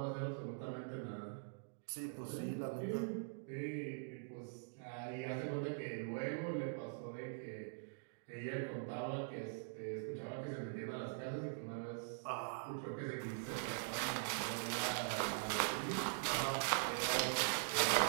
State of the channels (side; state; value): left; silent; digital silence